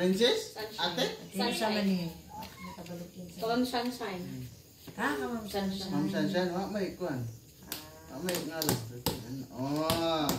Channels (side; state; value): both; identical; correlation 1.00